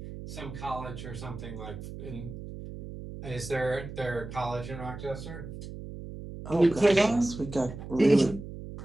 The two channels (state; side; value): noise; right; hum, 11 dB below the sound